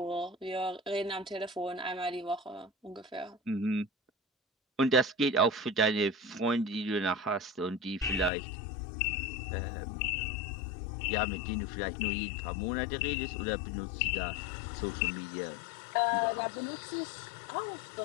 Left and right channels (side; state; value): right; drops out; at 8.3 s